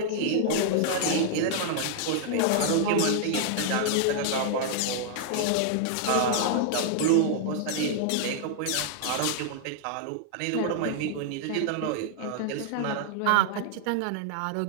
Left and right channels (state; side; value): different; both; correlation -0.01